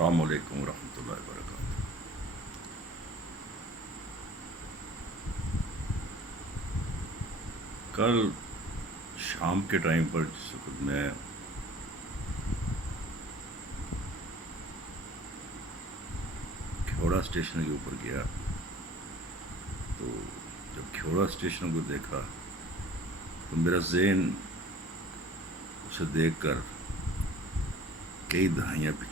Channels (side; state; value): both; normal; correlation 0.48